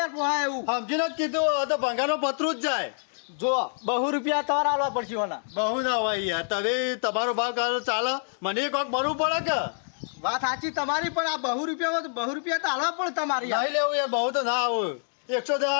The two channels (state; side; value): silent; right; digital silence